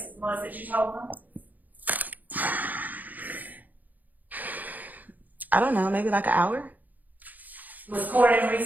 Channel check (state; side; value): late; left; 0.082 ms